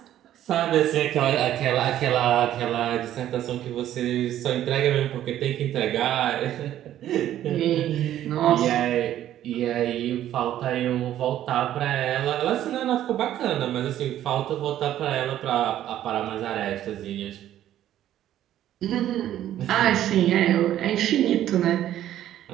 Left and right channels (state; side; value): quieter; left; 12.1 dB